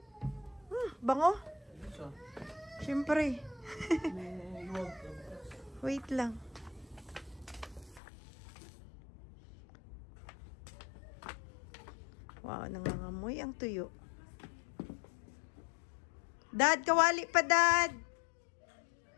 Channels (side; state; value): right; drops out; at 8.0 s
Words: Bango? Siyempre. Wait lang. Wow, nangangamoy ang tuyo. Dad, kawali pa, Dad.